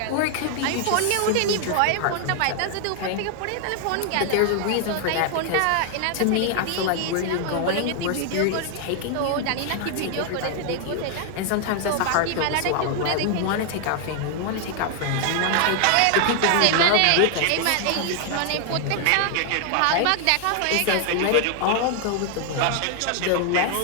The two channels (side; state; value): both; different; correlation 0.00